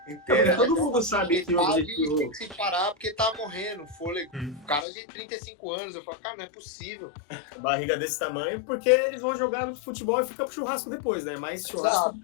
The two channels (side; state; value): right; drops out; at 4.9 s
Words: inteira. Todo mundo sabe que o objetivo... tem que se parar porque tá morrendo, fôlego. Cara de 35 anos, eu falo, cara, não é possível. Barriga desse tamanho, porque eles vão jogar no futebol e fica pro churrasco depois, né? Mais churrasco do